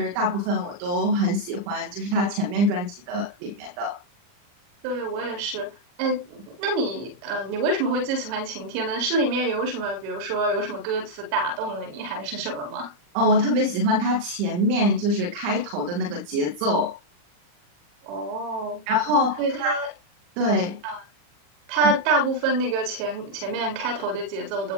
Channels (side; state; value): left; late; 40 ms